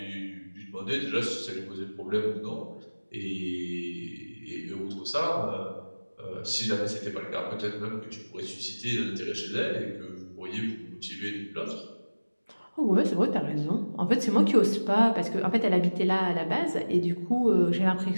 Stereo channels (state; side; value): inverted; both; correlation -1.00